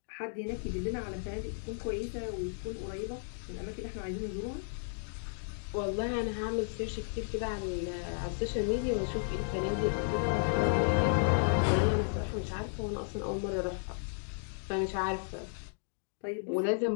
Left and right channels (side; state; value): right; silent; digital silence